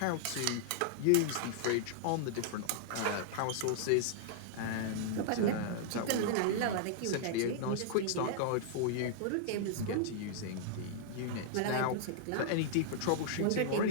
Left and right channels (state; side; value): different; both; correlation -0.01